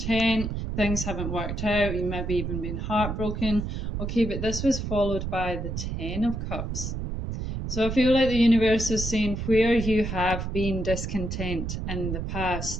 things haven't worked out, you maybe even been heartbroken. Okay, but this was followed by the Ten of Cups. So I feel like the universe is saying where you have been discontent in the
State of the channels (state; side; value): noise; right; rumble, 4 dB below the sound